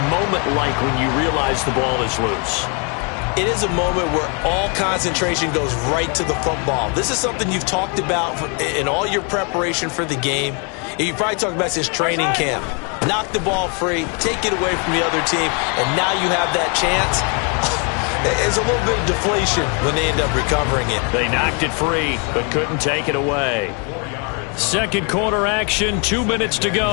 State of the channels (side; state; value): right; quieter; 36.4 dB